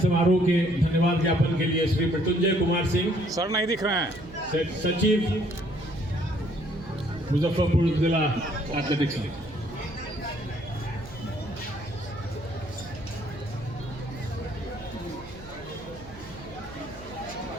के धन्यवाद ज्ञापन के लिए श्री मृत्युंजय कुमार सिंह, सर नहीं दिख रहे हैं, सचिव मुजफ्फरपुर जिला एथलेटिक्स।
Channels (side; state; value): right; noise; hum, 16 dB below the sound